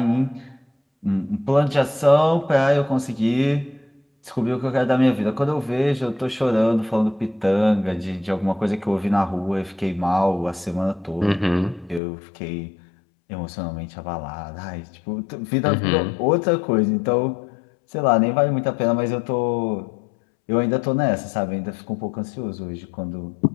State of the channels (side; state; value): right; drops out; at 12.0 s